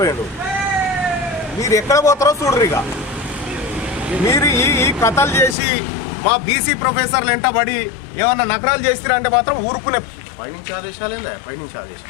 మీరు ఎక్కడ పోతారో చూడరు. ఇక మీరు ఈ కథలు చేసి మా బీసీ ప్రొఫెసర్లు వెంటబడి ఏమన్నా నకరాలు చేస్తారా అంటే మాత్రం ఊరుకునే. పైనుంచి ఆదేశాలు ఏందా? పైనుంచి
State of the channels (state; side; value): drops out; right; at 5.6 s